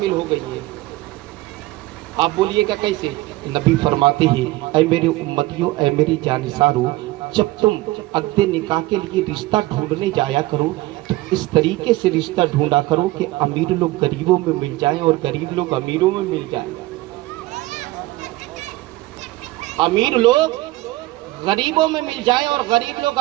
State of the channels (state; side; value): quieter; left; 19.0 dB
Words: ہو گئی ہیں۔ آپ بولیے گا کیسے؟ نبی فرماتے ہیں، اے میرے امتیوں، اے میری جانثاروں، جب تم عقد نکاح کے لیے رشتہ ڈھونڈنے جایا کرو تو اس طریقے سے رشتہ ڈھونڈا کرو کہ امیر لوگ غریبوں میں مل جائیں اور غریب لوگ امیروں میں مل جائیں، امیر لوگ غریبوں میں مل جائیں اور غریب لوگ